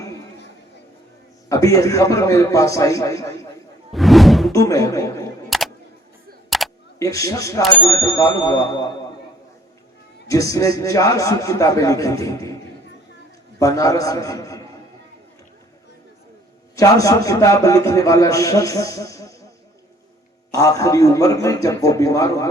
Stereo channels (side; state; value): both; normal; correlation 0.59